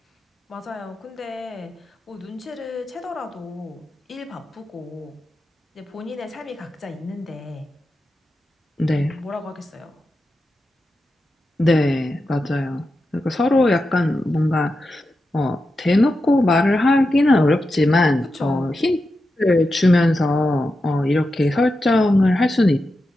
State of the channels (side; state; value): both; normal; correlation 0.90